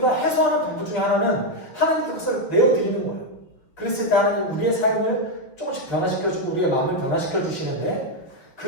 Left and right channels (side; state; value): right; late; 5.9 ms